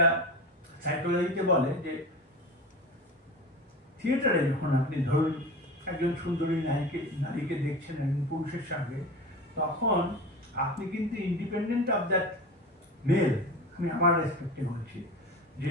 সাইকোলজিতে বলে যে থিয়েটারে যখন আপনি ধরুন একজন সুন্দরী নারীকে দেখছেন একজন পুরুষের সঙ্গে, তখন আপনি কিন্তু ইন্ডিপেন্ডেন্ট অফ দ্যাট মেল, আমি আমার রেসপেক্টে বলছি, যে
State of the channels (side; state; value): both; normal; correlation 0.31